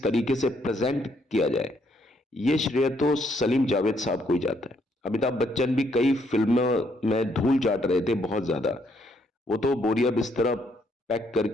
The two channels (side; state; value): both; normal; correlation 0.71